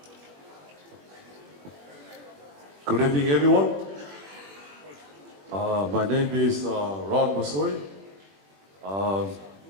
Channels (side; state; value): left; late; 21 ms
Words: Good evening, everyone. My name is Ron Masoi.